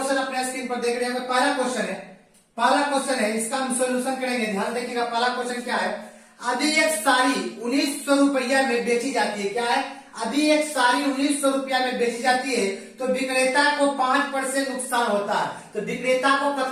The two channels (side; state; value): both; identical; correlation 1.00